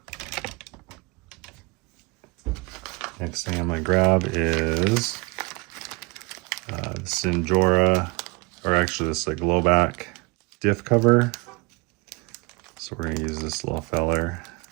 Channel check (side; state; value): left; quieter; 26.7 dB